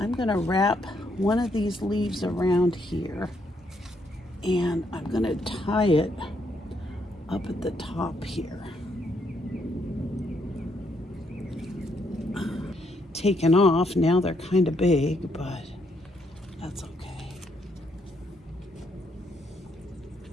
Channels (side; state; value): both; normal; correlation 0.74